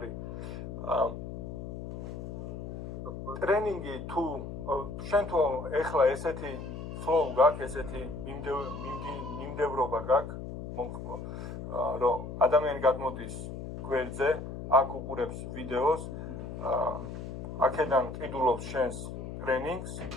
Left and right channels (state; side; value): noise; left; hum, 8 dB below the sound